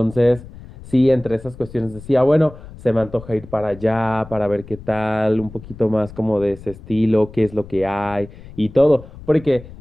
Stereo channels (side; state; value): left; noise; rumble, 17 dB below the sound